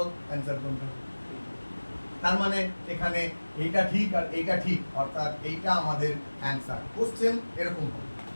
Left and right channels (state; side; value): inverted; both; correlation -1.00